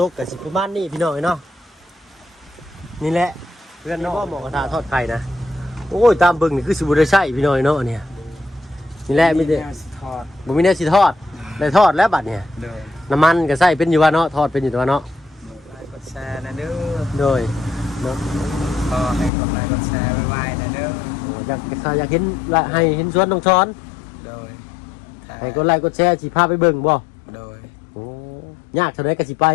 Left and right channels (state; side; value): drops out; right; at 19.3 s